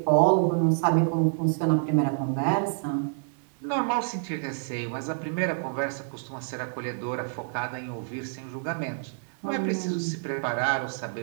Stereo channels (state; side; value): silent; left; 57 dB below the other